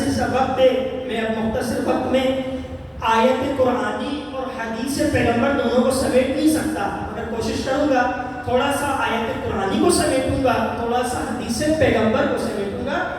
سا وقت ہے، میں اب مختصر وقت میں آیت قرآنی اور حدیث پیغمبر دونوں کو سمیٹ نہیں سکتا، مگر کوشش کروں گا تھوڑا سا آیت قرآنی کو سمیٹوں گا، تھوڑا سا حدیث پیغمبر کو سمیٹوں گا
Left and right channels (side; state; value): both; identical; correlation 1.00